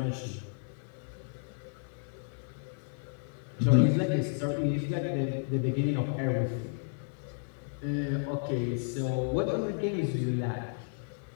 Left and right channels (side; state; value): right; silent; digital silence